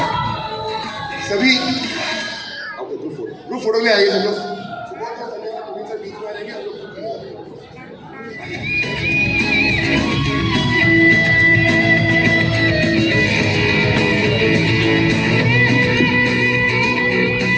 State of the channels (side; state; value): both; identical; correlation 1.00